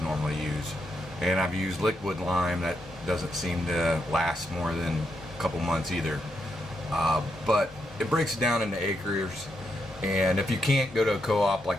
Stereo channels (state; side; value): normal; both; correlation 0.81